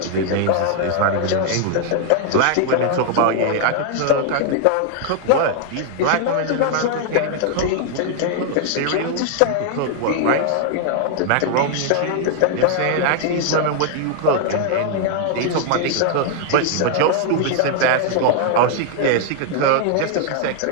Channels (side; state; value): both; different; correlation 0.00